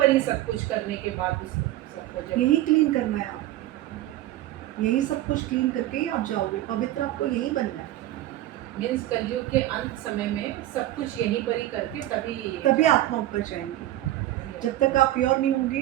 ही सब कुछ करने के बाद उस सबको जब यही क्लीन करना है। आप यही सब कुछ क्लीन करके ही आप जाओगे, पवित्र आपको यही बनना है। मीन्स कलयुग के अंत समय में सब कुछ यहीं पर ही करके तभी आत्मा ऊपर जाएंगी। जब तक आप प्योर नहीं होंगे,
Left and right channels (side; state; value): left; quieter; 14.8 dB